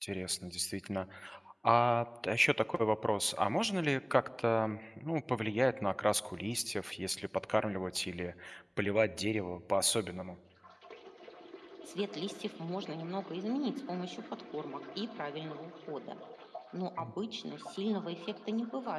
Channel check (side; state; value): both; identical; correlation 1.00